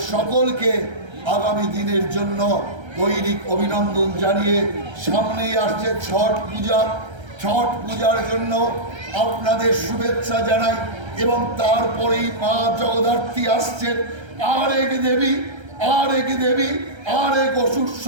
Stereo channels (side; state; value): left; late; 1.3 ms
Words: সকলকে আগামী দিনের জন্য দৈনিক অভিনন্দন জানিয়ে সামনেই আসছে ছট পূজা। ছট পূজার জন্য আপনাদের শুভেচ্ছা জানাই, এবং তারপরেই মা জগদ্ধাত্রী আসছেন, আর এক দেবী, আর এক দেবী, আর এক অসুর